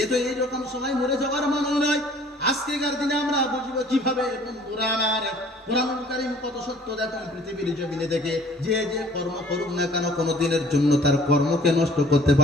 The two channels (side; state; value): both; normal; correlation 0.53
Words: এ তো এইরকম সময় মরে যাওয়ার মানুষ নয়। আজকেকার দিনে আমরা বুঝবো কিভাবে? বন্ধুরা আমার, কোরআনুল কারীম কত সত্য দেখুন পৃথিবীর জমিনে থেকে। যে যে কর্ম করুক না কেন, কোনো দিনের জন্য তার কর্মকে নষ্ট করতে